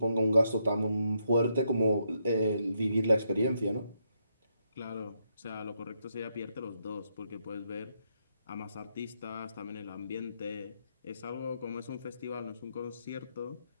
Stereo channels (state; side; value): inverted; both; correlation -0.78